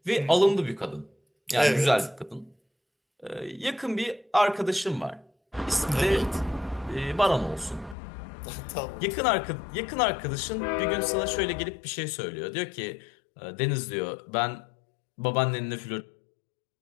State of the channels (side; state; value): right; drops out; at 8.0 s